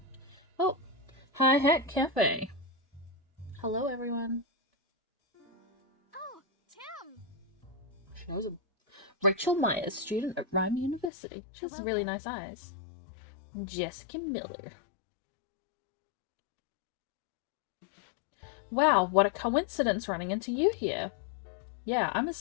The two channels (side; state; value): right; drops out; at 11.1 s